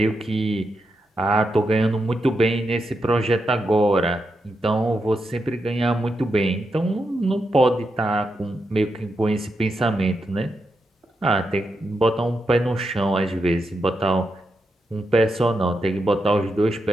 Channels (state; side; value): normal; both; correlation 0.85